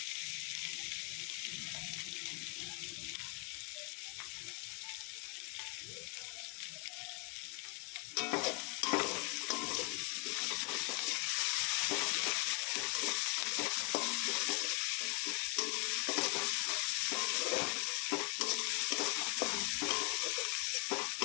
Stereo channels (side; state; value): right; quieter; 30.6 dB